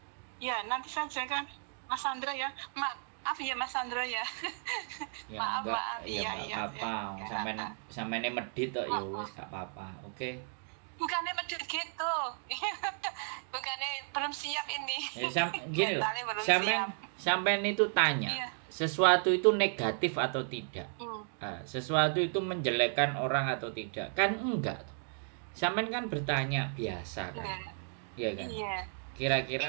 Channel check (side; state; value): left; silent; 55 dB below the other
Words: Iya, nanti saja kan Mas Sandro ya. Maaf ya Mas Sandro ya. Maaf. Iya. Sampean medit kok ya wis gak apa-apa. Oke. Bukannya medit gitu. Bukannya belum siap ini. Mentalnya belum siap. Sampean itu tanya, sesuatu itu negatif atau tidak? Sesuatu itu menjelekkan orang atau tidak? Kan enggak. Sampean kan bertanya biasa kan? Iya kan? Iya. Kira-kira